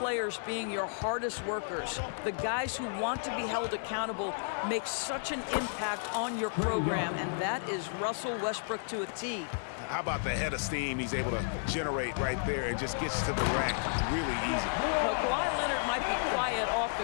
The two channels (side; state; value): right; silent; digital silence